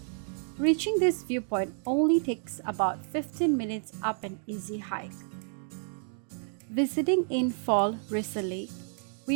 Reaching this viewpoint only takes about 15 minutes up an easy hike. Visiting in fall recently,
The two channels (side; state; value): left; silent; 58 dB below the other